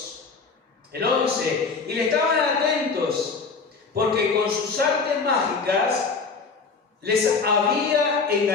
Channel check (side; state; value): right; quieter; 4.7 dB